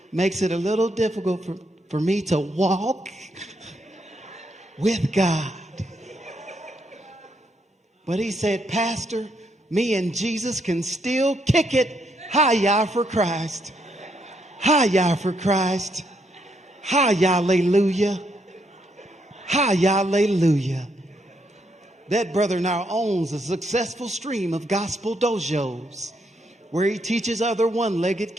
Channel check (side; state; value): both; normal; correlation 0.76